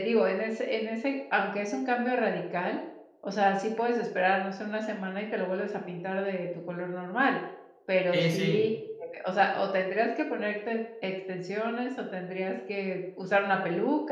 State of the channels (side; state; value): both; identical; correlation 1.00